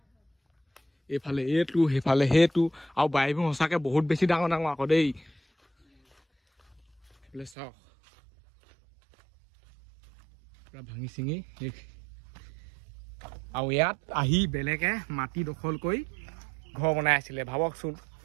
এইফালে এইটো সেইফালে সেইটো আৰু বাৰীবোৰ সঁচাকৈ বহুত বেছি ডাঙৰ ডাঙৰ আকৌ দেই এইফালে চাওক পূৰা ভাঙি চিঙি শেষ আৰু ইয়াত আহি বেলেগে মাটি দখল কৰি ঘৰ বনাই আছিলে ভাবকচোন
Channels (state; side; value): drops out; left; at 7.6 s